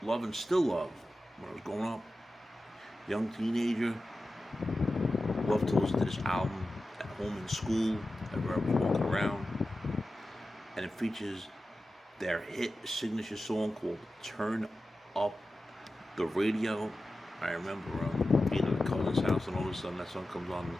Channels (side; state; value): both; normal; correlation 0.94